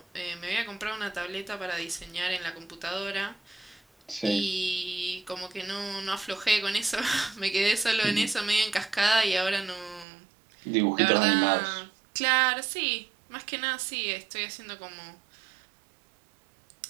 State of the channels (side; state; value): left; drops out; at 10.1 s